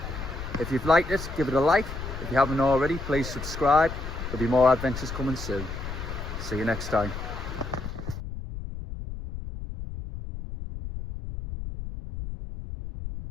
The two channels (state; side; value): noise; left; rumble, 8 dB below the sound